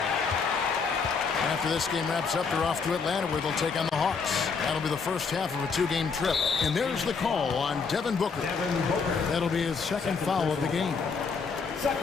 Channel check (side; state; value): right; quieter; 5.2 dB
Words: After this game wraps up, they're off to Atlanta where they'll take on the Hawks. That'll be the first half of a 2-game trip. And there's the call on Devin Booker. That'll be his second foul of the game.